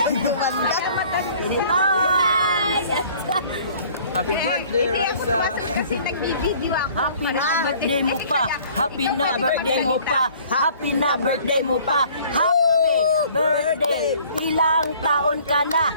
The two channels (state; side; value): inverted; both; correlation -0.53